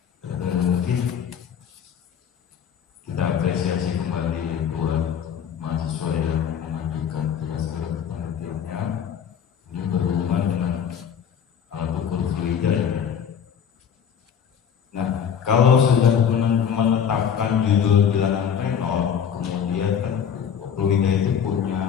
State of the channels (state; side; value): quieter; right; 8.0 dB